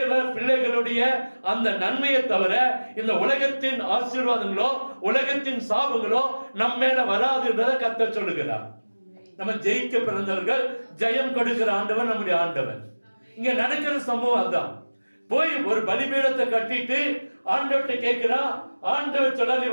பிள்ளைகளுடைய அந்த நன்மையை தவிர இந்த உலகத்தின் ஆசீர்வாதங்களோ உலகத்தின் சாபங்களோ நம்ம மேல வராதுன்றதை கர்த்தர் சொல்லுகிறார். நம்ம ஜெயிக்க பிறந்தவர்கள், ஜெயம் கொடுக்கிற ஆண்டவன் நம்முடைய ஆண்டவன். இங்க நடக்கிற சம்பவம் அதான். போய் ஒரு பலிபீடத்தை கட்டிட்டு ஆண்டவர்கிட்ட கேட்கிறா. ஆண்டவர் சொல்றாரு,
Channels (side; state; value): both; inverted; correlation -1.00